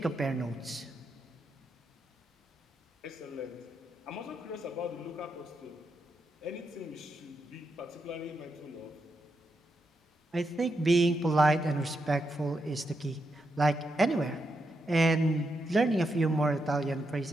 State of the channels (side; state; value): both; normal; correlation 0.83